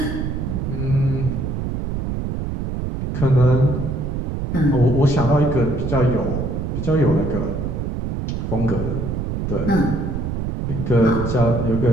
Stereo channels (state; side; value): noise; right; rumble, 3 dB below the sound